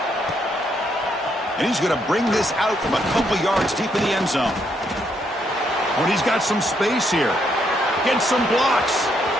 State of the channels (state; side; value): normal; both; correlation 0.75